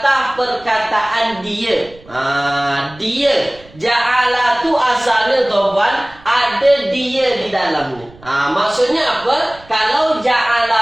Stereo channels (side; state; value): right; noise; rumble, 24 dB below the sound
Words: perkataan dia. Dia. Ja'ala tu asalnya tuan-puan, ada dia di dalamnya. Maksudnya apa? Kalau